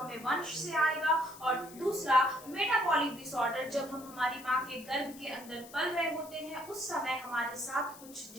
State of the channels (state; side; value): noise; left; hiss, 18 dB below the sound